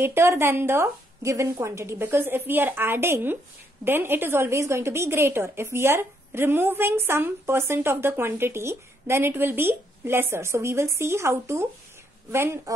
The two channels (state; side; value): normal; both; correlation 0.73